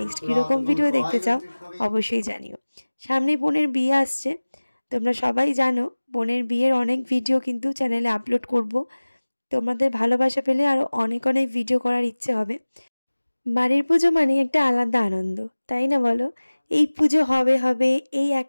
কীরকম ভিডিও দেখতে চাও অবশ্যই জানিও। সামনেই বোনের বিয়ে আসছে, তোমরা সবাই জানো বোনের বিয়ের অনেক ভিডিও কিন্তু চ্যানেলে আপলোড করব। তোমাদের ভালোবাসা পেলে আরও অনেক অনেক ভিডিও করার ইচ্ছে হবে। বাড়ির পুজো মানে একটা আলাদা আনন্দ, তাই না বলো? এই পুজো হবে হবে এই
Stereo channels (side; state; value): both; inverted; correlation -1.00